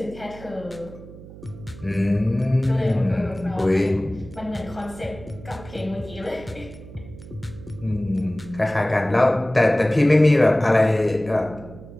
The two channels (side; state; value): right; noise; hum, 17 dB below the sound